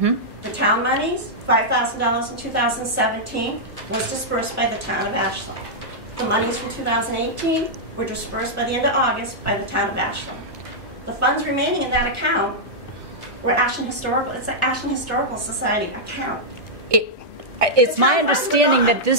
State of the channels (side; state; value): both; normal; correlation -0.07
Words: The town monies, $5,000 in 2017, was dispersed by the town of Ashland. The monies from 2018 were dispersed by the end of August by the town of Ashland. The funds remaining in that account were Ashland Historical. It's an Ashland Historical Society account. It's my understanding that